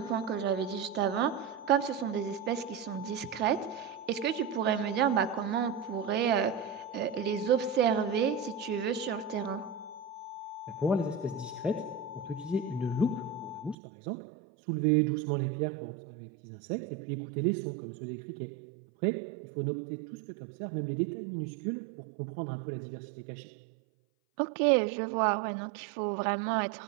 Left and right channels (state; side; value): drops out; left; at 13.8 s